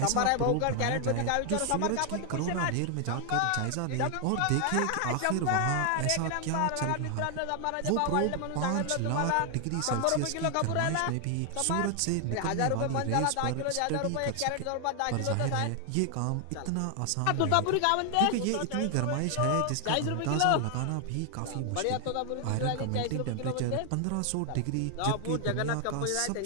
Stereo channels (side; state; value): both; different; correlation 0.00